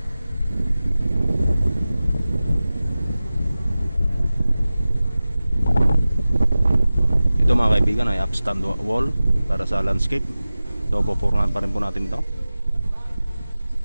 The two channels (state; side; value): inverted; both; correlation -0.96